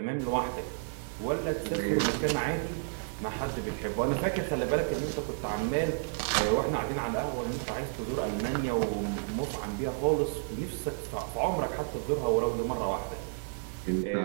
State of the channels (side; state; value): left; silent; digital silence